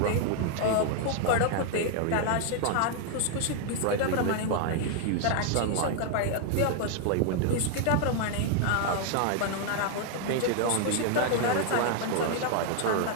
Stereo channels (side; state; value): both; different; correlation 0.00